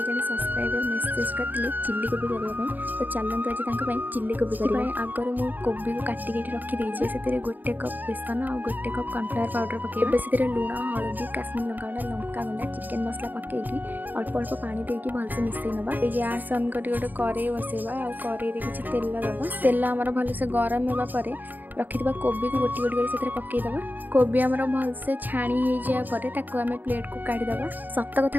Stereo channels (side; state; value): left; late; 0.086 ms